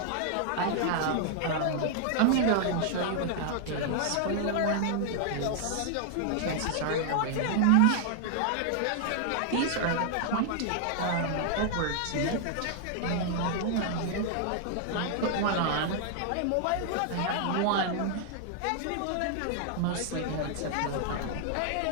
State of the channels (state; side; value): different; both; correlation 0.00